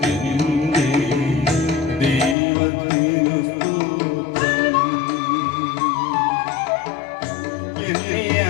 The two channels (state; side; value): drops out; right; at 2.4 s